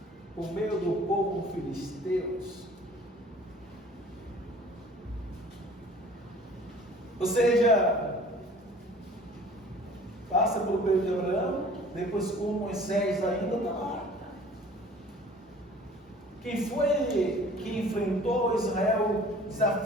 por meio do povo filisteus. Ou seja, passa pelo período de Abraão, depois com Moisés ainda está lá. Quem foi que enfrentou Israel,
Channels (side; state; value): both; normal; correlation 0.49